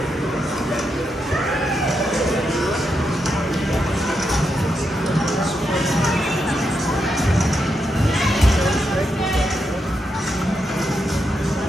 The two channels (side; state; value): both; normal; correlation 0.83